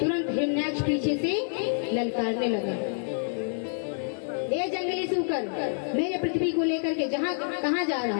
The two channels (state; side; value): silent; right; 60 dB below the other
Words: तुरंत हिरण्याक्ष पीछे से ललकारने लगा, ए जंगली सूकर, मेरे पृथ्वी को लेकर के कहाँ जा